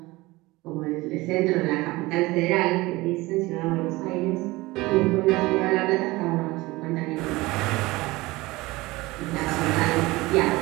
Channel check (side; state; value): left; quieter; 20.8 dB